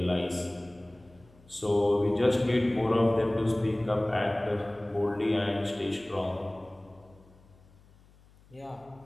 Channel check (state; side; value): noise; left; hum, 27 dB below the sound